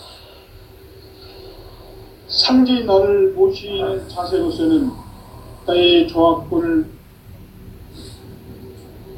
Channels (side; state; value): both; identical; correlation 1.00